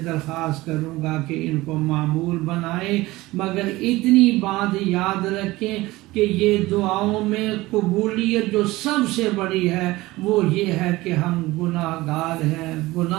درخواست کروں گا کہ ان کو معمول بنائیں، مگر اتنی بات یاد رکھیں کہ یہ دعاؤں میں قبولیت جو سب سے بڑی ہے وہ یہ ہے کہ ہم گناہ گار ہیں،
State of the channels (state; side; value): quieter; left; 19.3 dB